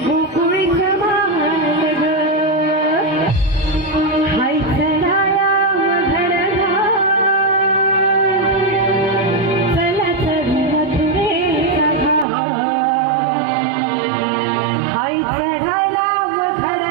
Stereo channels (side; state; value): left; drops out; at 12.2 s